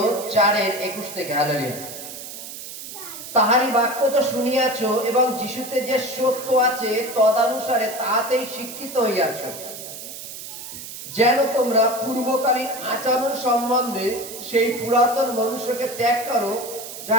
4:21 থেকে। হালেলুয়া। তাহারি বাক্য তো শুনিয়াছ এবং যিশুতে যে সত্য আছে তদানুসারে তাহাতেই শিক্ষিত হইয়াছ, যেন তোমরা পূর্বকালীন আচরণ সম্বন্ধে সেই পুরাতন মনুষ্যকে ত্যাগ করো, যা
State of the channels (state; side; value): noise; right; hiss, 11 dB below the sound